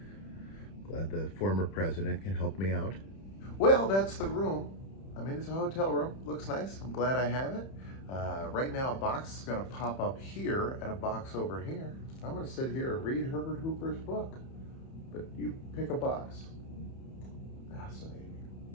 Glad the former president can help me out. Well, that's the room. I mean, it's a hotel room. Looks nice. I'm glad I have it. Right now, a box is going to pop up here and a box over here. I'm going to sit here and read Herbert Hoover's book. But you pick a box. Fascinating.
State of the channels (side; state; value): right; late; 31 ms